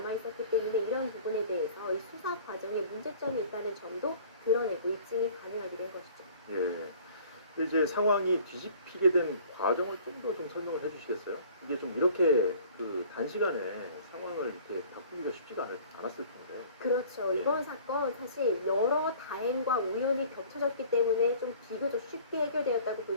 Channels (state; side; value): inverted; both; correlation -0.49